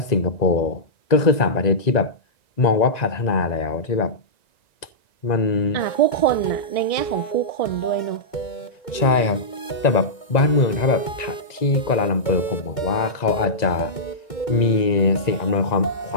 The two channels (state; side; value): late; right; 1.9 ms